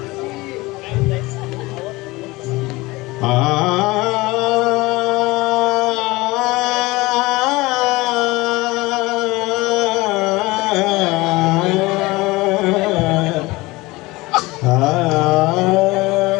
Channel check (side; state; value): right; quieter; 21.5 dB